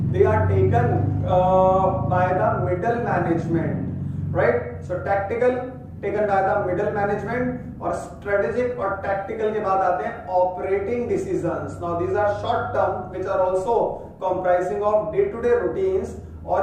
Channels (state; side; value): identical; both; correlation 1.00